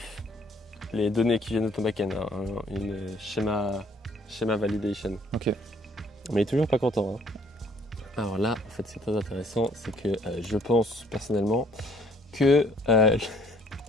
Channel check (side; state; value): both; normal; correlation 0.61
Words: les données qui viennent de ton backend, hein, une schéma validation. Ok. Mais il est toujours pas content. Hein. Alors là, en fait, c'est très intéressant, c'est que je pense personnellement que